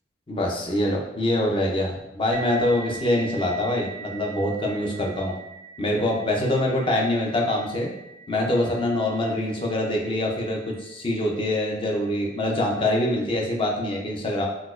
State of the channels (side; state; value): both; normal; correlation 0.56